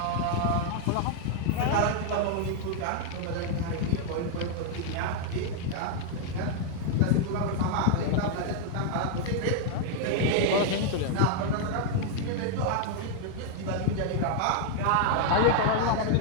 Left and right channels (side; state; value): both; different; correlation 0.00